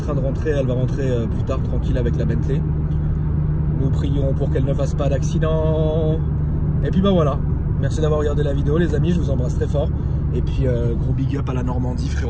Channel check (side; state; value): both; identical; correlation 1.00